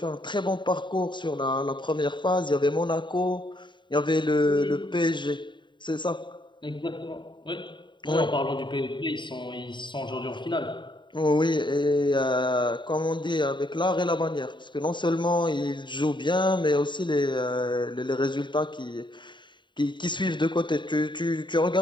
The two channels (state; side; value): late; right; 0.23 ms